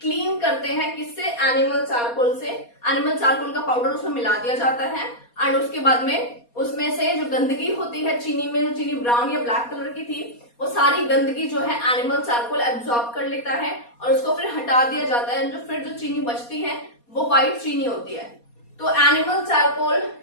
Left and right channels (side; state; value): right; late; 4.2 ms